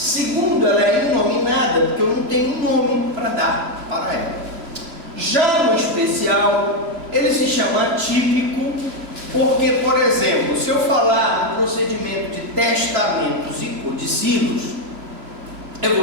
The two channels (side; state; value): left; late; 3.0 ms